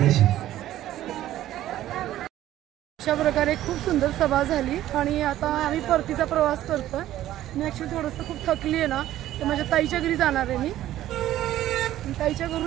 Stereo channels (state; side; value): quieter; left; 13.5 dB